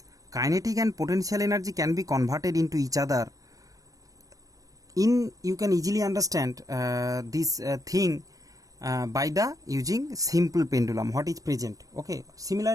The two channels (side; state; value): left; late; 0.17 ms